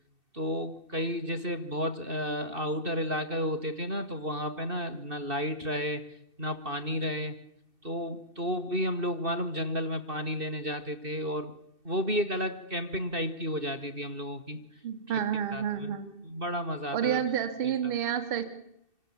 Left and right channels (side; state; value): left; late; 2.6 ms